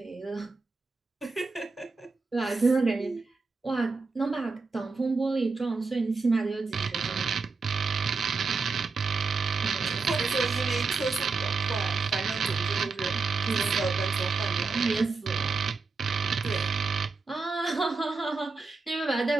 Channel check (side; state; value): left; quieter; 4.2 dB